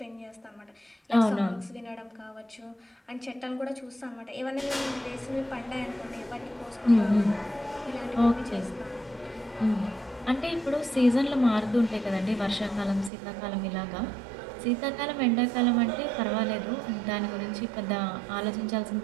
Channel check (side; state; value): left; drops out; at 13.1 s